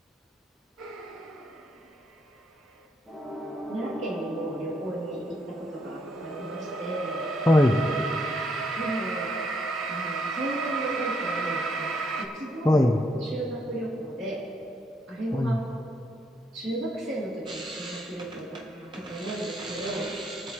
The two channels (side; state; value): both; normal; correlation 0.73